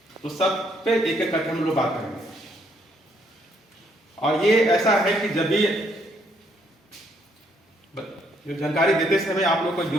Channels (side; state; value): both; normal; correlation 0.70